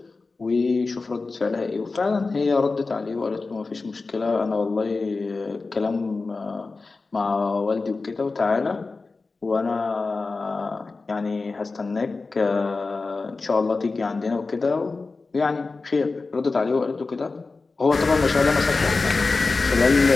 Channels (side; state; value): right; quieter; 3.9 dB